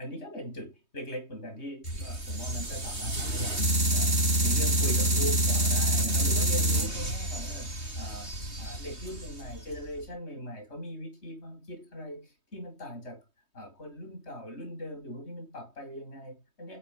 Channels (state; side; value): late; right; 3.2 ms